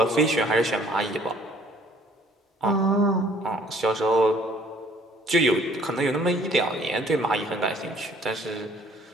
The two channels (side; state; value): both; normal; correlation 0.58